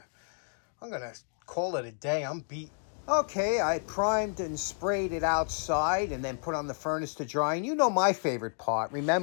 call it a day. I'm beat. Okay, I primed and sprayed it outside and then put on the furnace to dry. And you know my favorite part.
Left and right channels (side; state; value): right; silent; 57 dB below the other